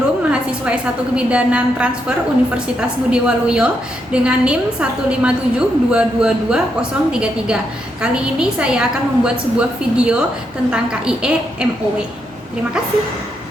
mahasiswa S1 Kebidanan Transfer Universitas Budi Waluyo dengan NIM 157222033. Kali ini saya akan membuat sebuah video tentang KIE MOW. Terima kasih.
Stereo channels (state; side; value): normal; both; correlation 0.80